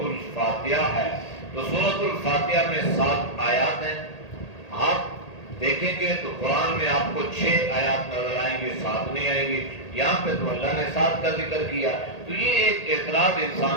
الفاتحہ ہے۔ تو سورۃ الفاتحہ میں 7 آیات ہیں، آپ دیکھیں گے تو قرآن میں آپ کو 6 آیات نظر آئیں گی، 7 نہیں آئیں گی، یہاں پہ تو اللہ نے 7 کا ذکر کیا۔ تو یہ ایک اعتراض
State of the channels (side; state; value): right; late; 1.8 ms